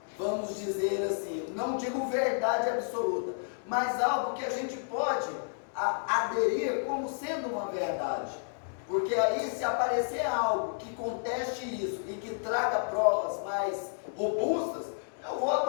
vamos dizer assim, não digo verdade absoluta, mas algo que a gente pode aderir como sendo uma verdade. Porque aí, se aparecer algo que conteste isso e que traga provas mais robustas, eu vou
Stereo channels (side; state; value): right; silent; digital silence